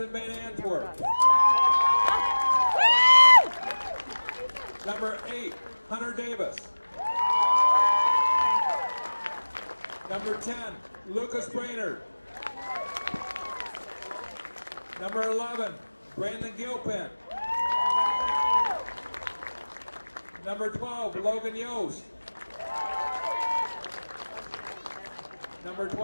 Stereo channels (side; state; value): both; inverted; correlation -1.00